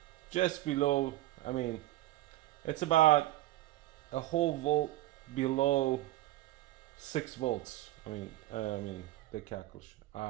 just below. I mean, it's about a whole volt below 6 volts. I mean the calculation.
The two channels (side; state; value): left; quieter; 16.6 dB